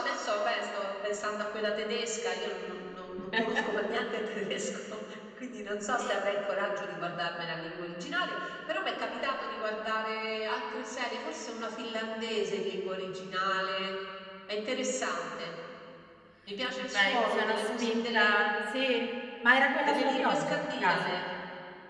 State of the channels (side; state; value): both; identical; correlation 1.00